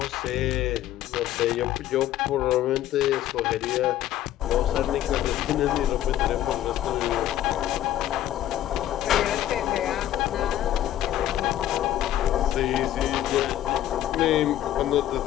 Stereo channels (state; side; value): quieter; right; 12.6 dB